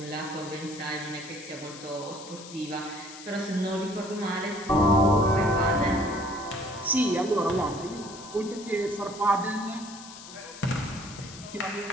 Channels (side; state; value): left; noise; hiss, 15 dB below the sound